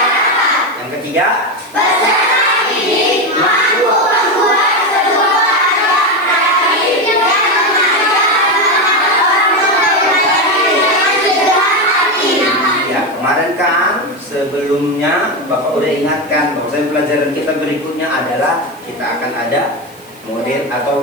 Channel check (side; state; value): right; noise; hiss, 26 dB below the sound